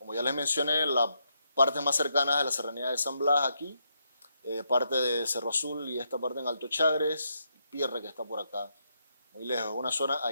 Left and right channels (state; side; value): inverted; both; correlation -0.80